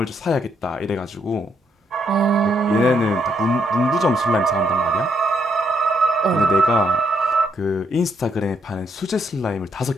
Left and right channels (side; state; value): both; normal; correlation 0.74